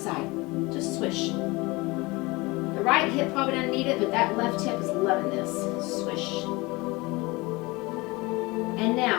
Just swish. The right hip probably doesn't need it, but that left hip is loving this. Swish. And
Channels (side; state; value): right; quieter; 23.6 dB